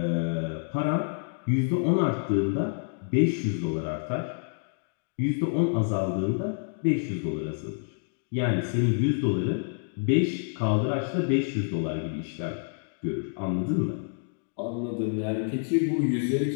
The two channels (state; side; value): silent; right; digital silence